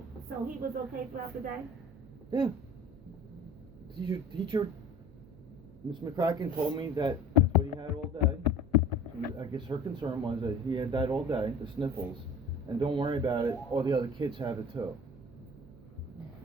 So he was okay throughout the day? Yeah. Teacher, Miss McCracken told me that that's what he had all day. I guess her concern was that he had that all day, the sniffles, and don't worry about it, all the other kids have it too.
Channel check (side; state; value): right; noise; hum, 21 dB below the sound